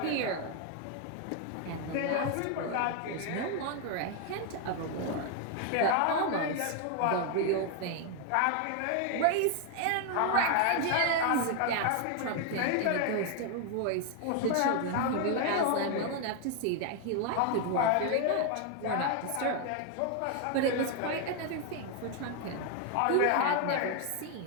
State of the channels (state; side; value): different; both; correlation 0.01